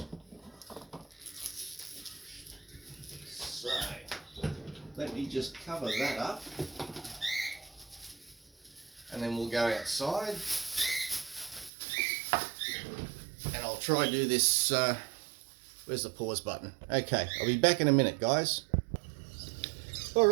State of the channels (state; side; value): drops out; left; at 11.7 s